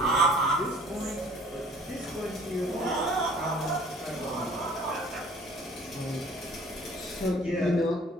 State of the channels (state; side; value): normal; both; correlation 0.52